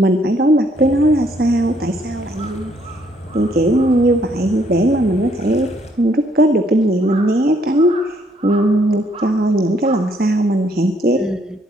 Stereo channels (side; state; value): both; normal; correlation 0.67